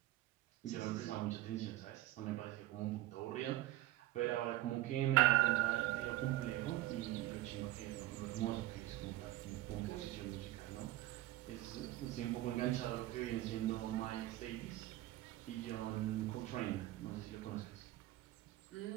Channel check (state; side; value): quieter; left; 16.1 dB